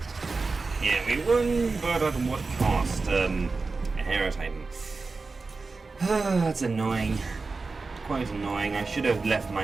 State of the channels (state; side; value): quieter; left; 4.0 dB